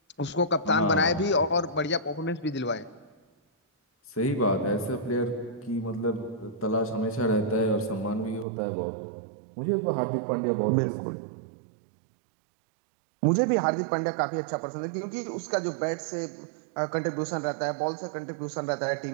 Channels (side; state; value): left; drops out; at 8.5 s